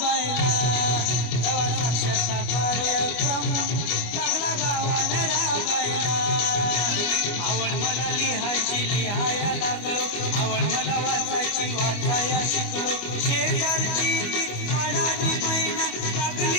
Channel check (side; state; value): right; late; 25 ms